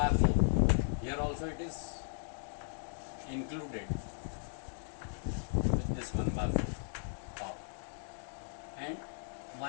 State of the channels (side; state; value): right; silent; digital silence